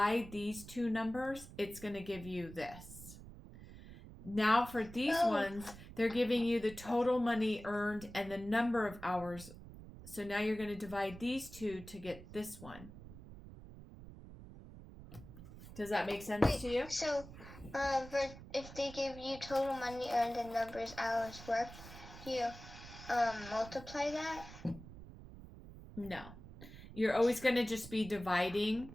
these 2 numbers, it's going to give you this. Now for these ones, they're giving you the total money earned and the number of hours. So now you're going to divide these two to get this one. Does that make sense to you? So, if they give you total money earned and numbers hours worked, you multiply that? No. You're always going to just be dividing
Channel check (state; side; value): noise; right; rumble, 15 dB below the sound